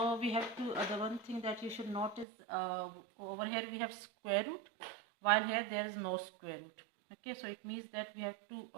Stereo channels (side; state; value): left; drops out; at 2.2 s